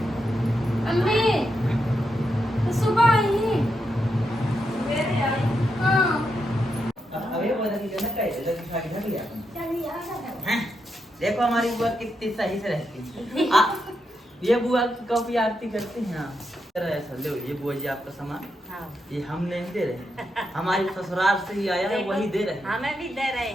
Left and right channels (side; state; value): both; normal; correlation 0.83